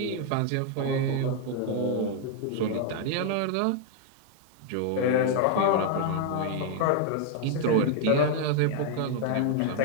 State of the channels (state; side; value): different; both; correlation 0.00